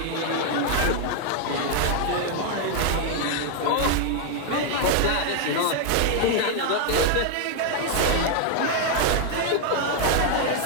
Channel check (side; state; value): both; different; correlation 0.00